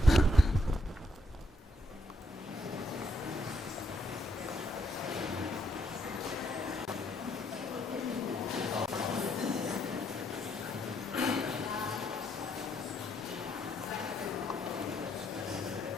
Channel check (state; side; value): normal; both; correlation 0.74